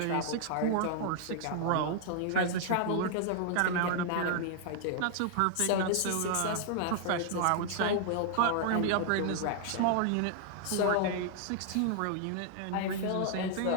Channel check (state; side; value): different; both; correlation 0.00